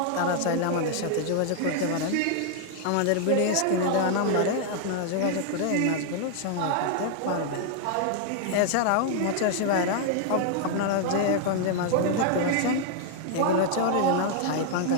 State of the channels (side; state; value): both; different; correlation 0.00